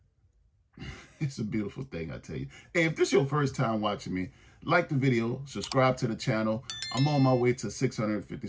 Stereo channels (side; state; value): both; identical; correlation 1.00